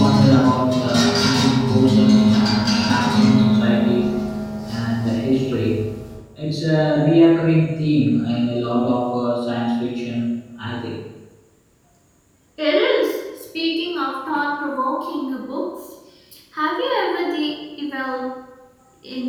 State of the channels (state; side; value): identical; both; correlation 1.00